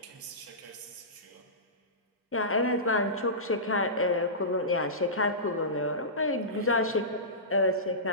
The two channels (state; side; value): normal; both; correlation -0.20